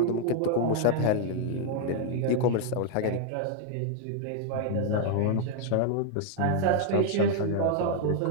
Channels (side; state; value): both; different; correlation 0.00